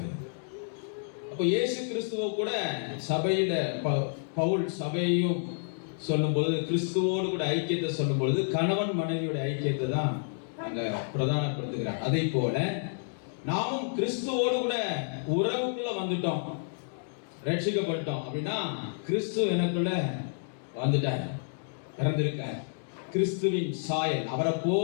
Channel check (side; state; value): right; silent; digital silence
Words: அப்போ இயேசு கிறிஸ்துவ கூட சபையில பவுல் சபையையும் சொல்லும் பொழுது, கிறிஸ்துவோடு கூட ஐக்கியத்தை சொல்லும் பொழுது கணவன் மனைவியோட ஐக்கியத்தை தான் அங்க பிரதானப்படுத்துகிறார். அதே போல நாமும் கிறிஸ்துவோடு கூட உறவுக்குள்ள வந்துட்டோம், ரட்சிக்கப்பட்டோம் அப்படின்னா கிறிஸ்து எனக்குள்ள வந்துட்டார், பிறந்திருக்கார். கிறிஸ்துவின் சாயல், அவரை